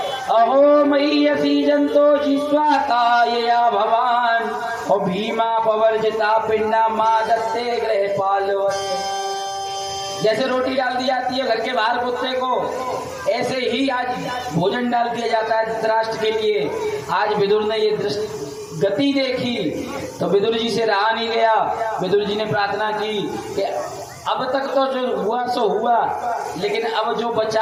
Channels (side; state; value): both; identical; correlation 1.00